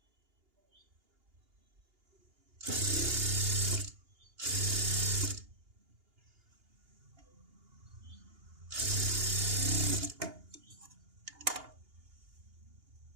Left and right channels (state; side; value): late; left; 2.8 ms